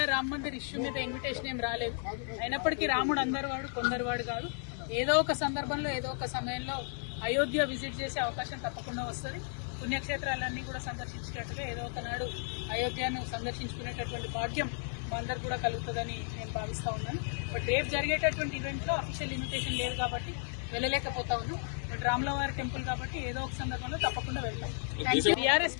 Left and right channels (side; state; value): right; silent; 55 dB below the other